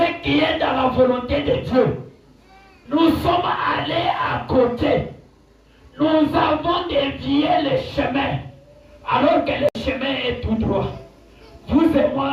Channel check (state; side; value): identical; both; correlation 1.00